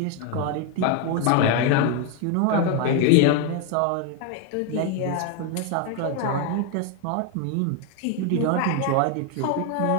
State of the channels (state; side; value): different; both; correlation 0.01